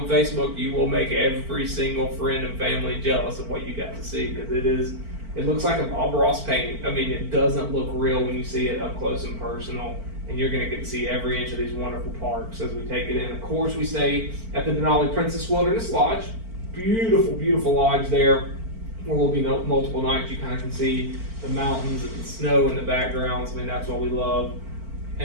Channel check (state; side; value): late; left; 4.5 ms